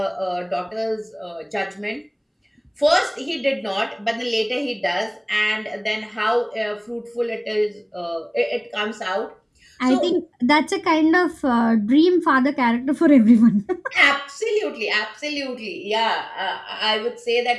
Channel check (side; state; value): both; identical; correlation 1.00